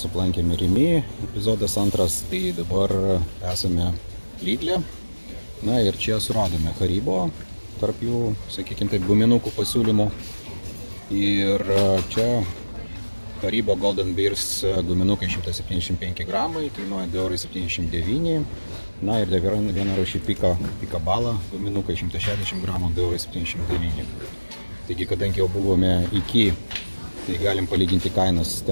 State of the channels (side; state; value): both; inverted; correlation -1.00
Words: aplankėme Rimi, epizodas antras, tai dabar esame Lidle. Na ir čia suradome Haribo, tarp jų, sakykime taip, guminukų pasiūlymų. Ir čia Haribo Golden Bears guminukai 175 gramai, kainuoja 2,79 €. Na ir dar viena rūšį Pika Bala, guminukai 160 gramų, 2,79 €. Taigi, kadangi jau buvome iki, tai galim palyginti kainas.